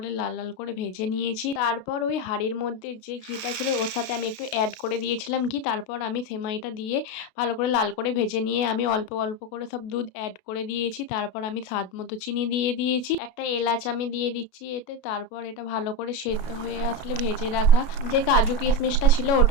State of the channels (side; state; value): right; late; 33 ms